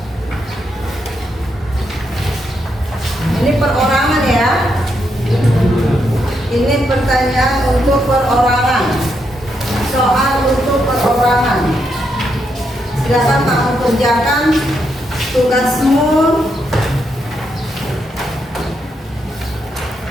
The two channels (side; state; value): both; normal; correlation 0.80